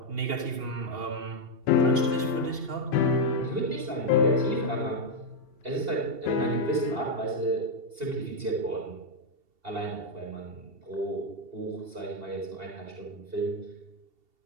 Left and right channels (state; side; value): late; left; 2.7 ms